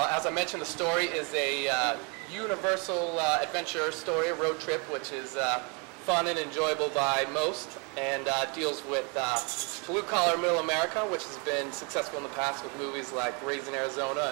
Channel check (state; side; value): quieter; left; 33.2 dB